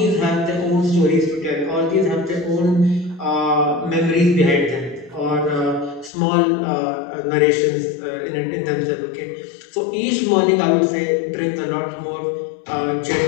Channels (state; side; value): drops out; right; at 6.1 s